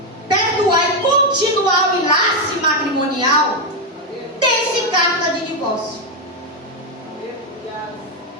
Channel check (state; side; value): normal; both; correlation 0.05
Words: perdoar e continuar o enlace matrimonial, dê-se carta de divórcio.